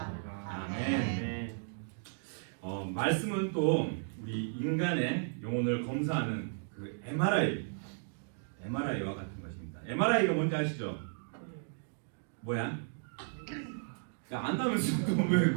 아멘. 말씀은 또 우리 인간의 영혼을 검사하는 그 MRI와 같은 것입니다. MRI가 뭔지 아시죠? 뭐야? 야, 안다면서 또 왜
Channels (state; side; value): silent; left; digital silence